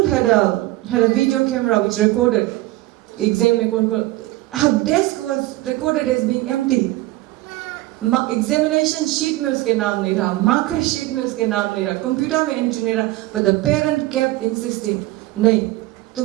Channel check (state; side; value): quieter; left; 18.2 dB